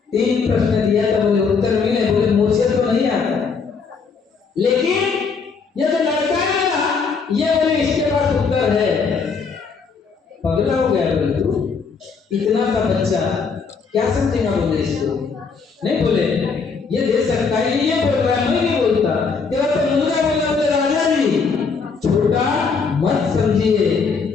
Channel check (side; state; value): right; quieter; 5.2 dB